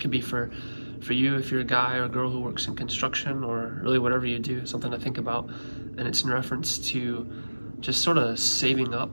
be for you if you're a guy or a girl who works in construction, or really whatever you do, something to think about. And it's in reference to just sort of saving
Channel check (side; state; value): both; inverted; correlation -1.00